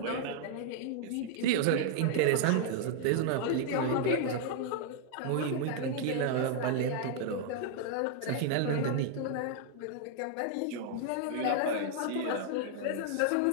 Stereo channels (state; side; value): different; both; correlation 0.00